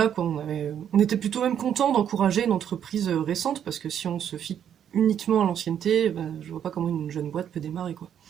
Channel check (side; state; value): left; quieter; 9.2 dB